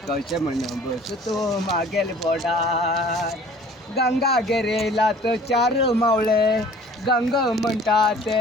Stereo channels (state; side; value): normal; both; correlation 0.49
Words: कशे म्हण बसतो मागेल बोडार. गंगा गेरेला तर चार मावळे, गंग म्हणटा ते